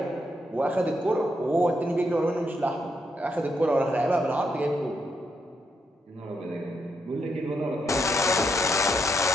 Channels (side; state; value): both; normal; correlation 0.80